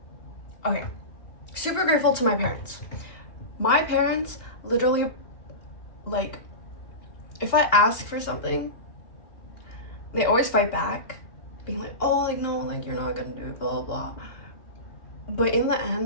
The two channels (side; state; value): right; late; 2.8 ms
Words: Okay. Super grateful to my parents. My parents literally, like, if I ask for something, they always fight back, being like, oh, like, no, like, you're not gonna do it, blah, blah, blah. But in the